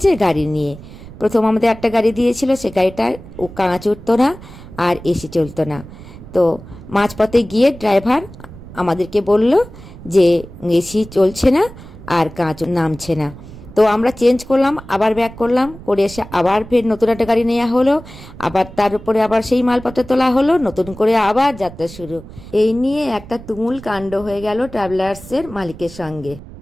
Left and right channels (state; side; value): noise; right; rumble, 16 dB below the sound